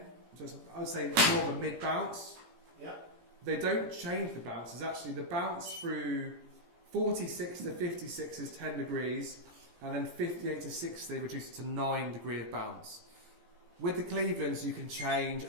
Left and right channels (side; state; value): left; late; 17 ms